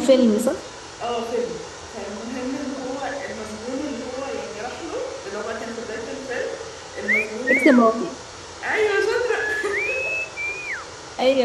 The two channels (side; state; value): both; identical; correlation 1.00